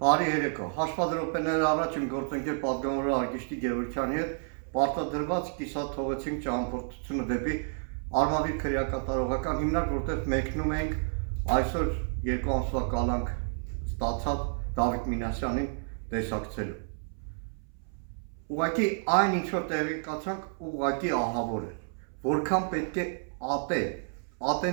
Բարի երեկո, հաշվադրոպեները առաջ իմ գործընկեր պատգամավոր Արգիշտի Գևորգյանի հետ պարտադրված կիսաթողեցինք ճամփորդությունը դեպի Արմավիր քրեակատարողական հիմնարկ, որտեղ մեկնում ենք այսօր 2 ամսվա կալանք ստացած Դավիթ Մինասյանին տեսակցելու։ Ուղղակի այն ինչ որ տեղի կացանք, ուղղակի ահավոր է, որքան պետք է ատեն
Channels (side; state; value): left; silent; 58 dB below the other